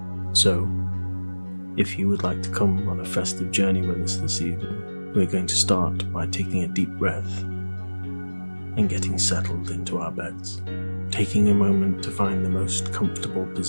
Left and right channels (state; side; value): inverted; both; correlation -1.00